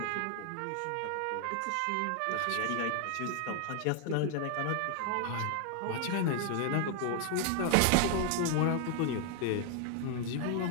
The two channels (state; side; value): different; both; correlation 0.00